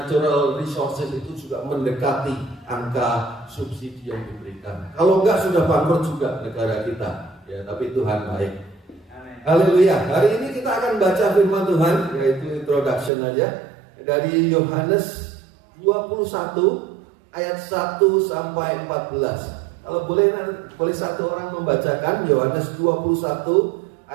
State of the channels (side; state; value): left; drops out; at 13.1 s